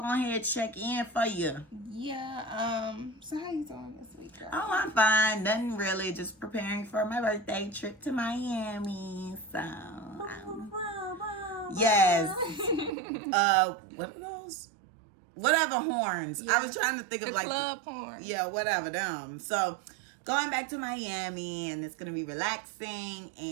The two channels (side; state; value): left; drops out; at 12.9 s